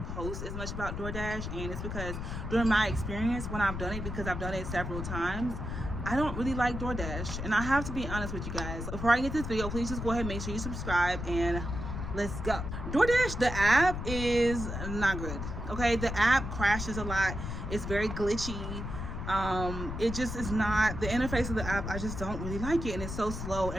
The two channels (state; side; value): noise; left; rumble, 5 dB below the sound